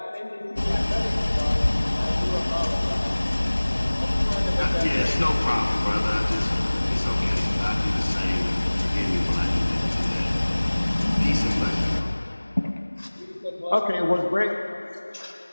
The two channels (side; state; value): both; inverted; correlation -1.00